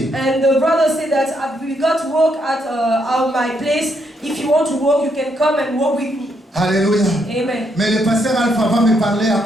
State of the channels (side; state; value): both; normal; correlation 0.76